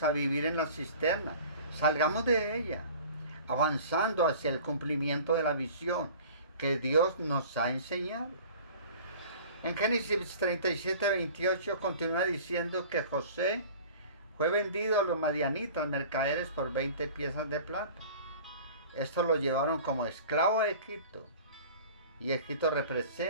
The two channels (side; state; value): both; inverted; correlation -0.44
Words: a vivir en la cisterna, salgamos de ella, avanzando hacia el cumplimiento de la visión que Dios nos ha enseñado. En Génesis 37, 28 continúa diciendo que José fue vendido a los madianitas mercaderes por 20 piezas de plata. Esto lo llevaron como esclavo a Egipto. Y Egipto